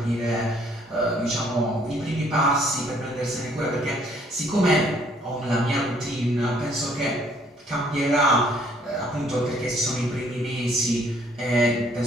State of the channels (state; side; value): normal; both; correlation 0.63